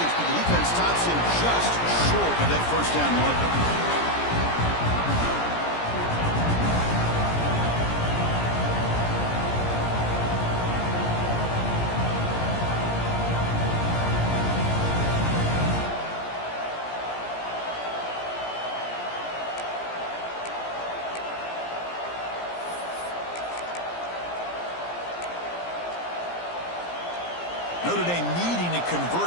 but the defense stops him just short of that first down marker. Notre Dame needing to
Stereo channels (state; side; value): late; right; 17 ms